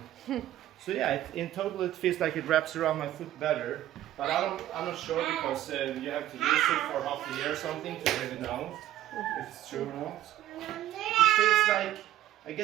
So yeah, in total it feels like it wraps around my foot better. But I'm not sure, because you have to use it for half a year or something to really know if it's true or not. It feels like, I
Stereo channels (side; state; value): left; quieter; 13.2 dB